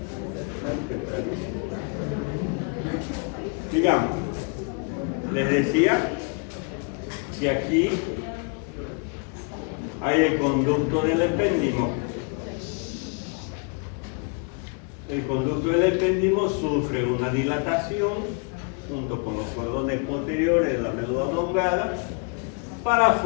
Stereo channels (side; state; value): right; quieter; 35.0 dB